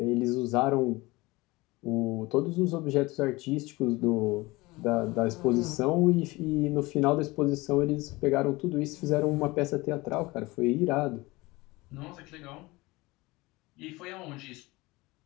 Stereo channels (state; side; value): quieter; right; 21.9 dB